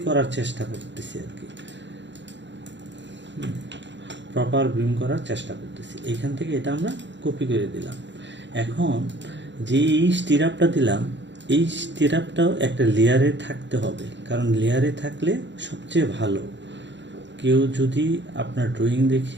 করার চেষ্টা করতেছি আর কি, প্রপার বিম করার চেষ্টা করতেছি। এইখান থেকে এটা আমরা কপি করে দিলাম। এখন যে এই স্টিরাপটা দিলাম, এই স্টিরাপটাও একটা লেয়ারে থাকতে হবে, কারণ লেয়ারে থাকলে সবচেয়ে ভালো। কেউ যদি আপনার ড্রয়িং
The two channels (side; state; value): left; late; 0.53 ms